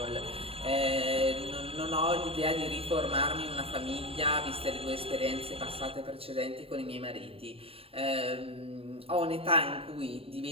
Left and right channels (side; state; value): left; late; 0.28 ms